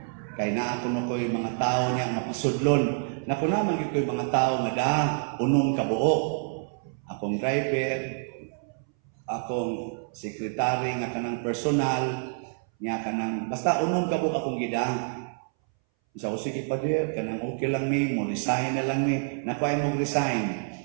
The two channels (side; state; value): left; silent; 60 dB below the other